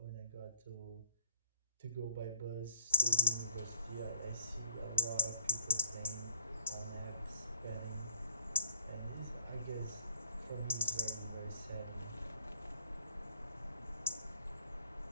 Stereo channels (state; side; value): inverted; both; correlation -0.60